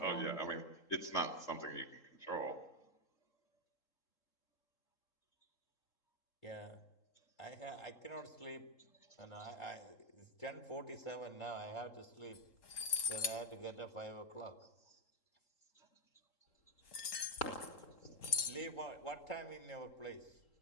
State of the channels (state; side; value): late; right; 3.7 ms